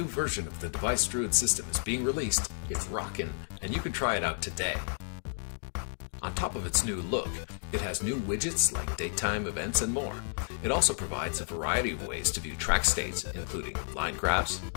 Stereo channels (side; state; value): right; silent; 57 dB below the other